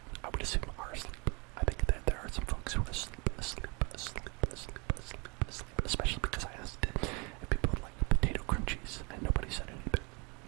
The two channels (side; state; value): left; quieter; 30.4 dB